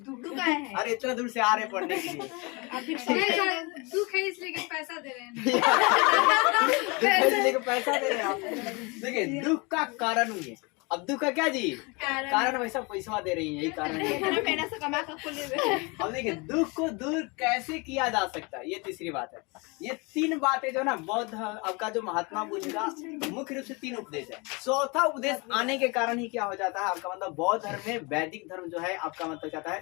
है। अरे इतना दूर से आ रहे हैं पढ़ने के लिए। दुख है इसलिए कि पैसा दे रहे हैं। दुख है इसलिए कि पैसा दे रहे हैं आप। देखिए दुख का कारण हुई है। अब दुख का क्या जी कारण वैसा पैसा दे रही है, यही कारण है। अब देखिए दुख को दूर कैसे किया जा सकता है, ये तीसरी बात है। ये 3 बातें जो ना बौद्ध आपका जो महात्मा बुद्ध का मुख्य रूप से 3 उपदेश है। चौथा उपदेश आने के कारण ही क्या हो जाता है आपका मतलब बौद्ध धर्म में वैदिक धर्म जो है आपका मतलब कहता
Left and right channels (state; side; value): quieter; right; 28.4 dB